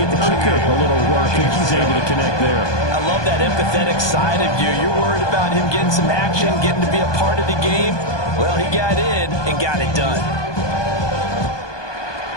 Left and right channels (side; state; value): right; late; 1.2 ms